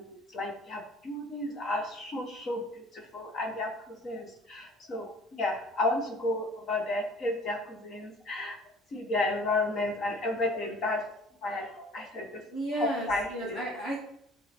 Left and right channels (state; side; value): normal; both; correlation 0.49